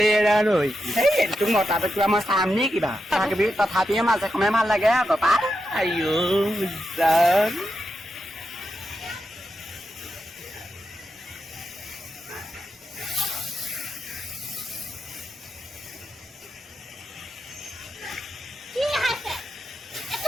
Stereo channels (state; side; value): normal; both; correlation 0.87